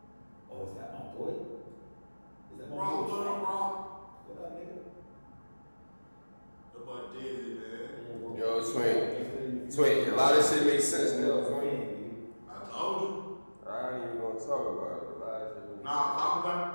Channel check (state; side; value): inverted; both; correlation -1.00